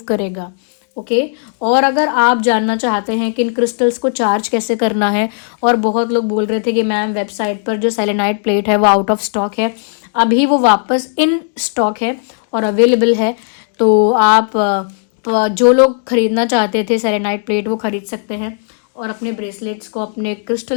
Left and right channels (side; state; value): right; silent; digital silence